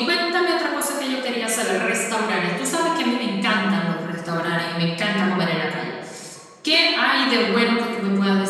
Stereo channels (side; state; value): both; identical; correlation 1.00